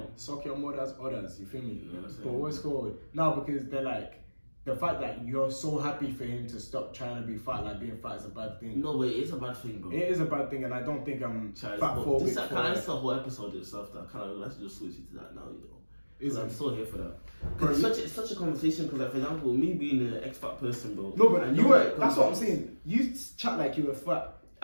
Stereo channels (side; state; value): both; inverted; correlation -1.00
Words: Suck your mother's orders. You feel me? Yeah, but what's called now because they're like. The fact that you're so happy for him to stop trying to be fat, like being fat is a bad thing. No, but it is a bad thing, bro. It is a bad thing, and I don't think I'm fat phobic. This is a whole episode itself that let's just switch it to that now, you know. I'm so here for that. Bro, it's such a conversation because, like, for example, me being an ex-fat person, bro. No, but you were. That's what I'm saying. You chat like you were fat.